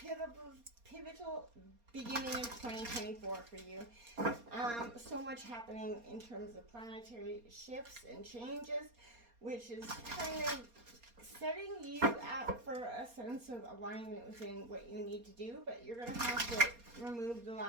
beginning of 2024 for you. So much happening in terms of planetary shifts and changes, which is kind of setting you up for a sense of alignment within what you need to do, but you're going to have to remove the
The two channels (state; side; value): late; left; 4.3 ms